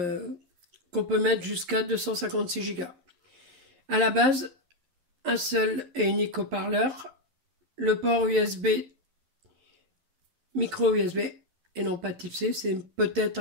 qu'on peut mettre jusqu'à 256 Go. À la base, un seul et unique haut-parleur, le port USB, micro USB et non pas type C, c'est peut-être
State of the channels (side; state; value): left; late; 11 ms